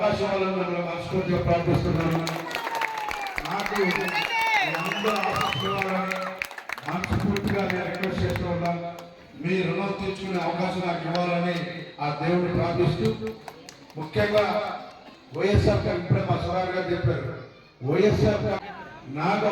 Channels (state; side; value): identical; both; correlation 1.00